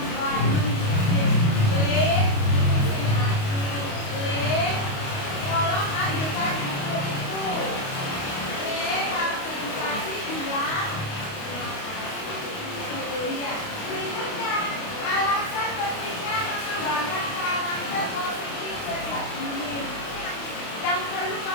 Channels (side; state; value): right; late; 28 ms